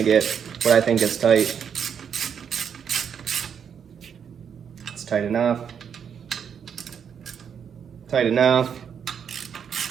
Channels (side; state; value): left; quieter; 7.6 dB